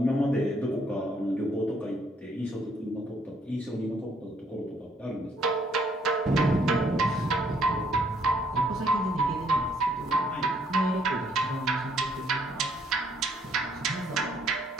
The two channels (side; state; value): both; normal; correlation 0.67